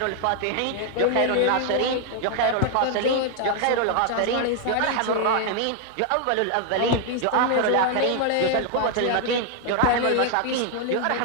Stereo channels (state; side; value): different; both; correlation 0.00